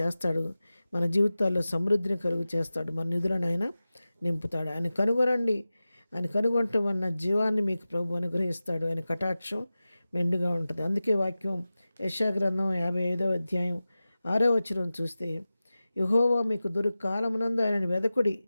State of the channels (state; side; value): inverted; both; correlation -0.95